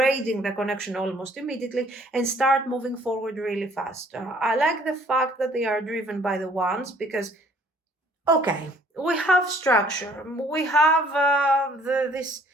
the connection almost immediately and start moving forward really fast. I like the fact that they are driven by the Wands because, okay, we have structure, we have this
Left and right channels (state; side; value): normal; both; correlation 0.59